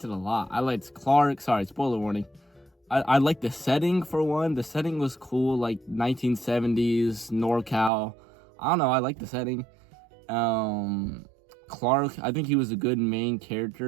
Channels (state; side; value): drops out; left; at 7.9 s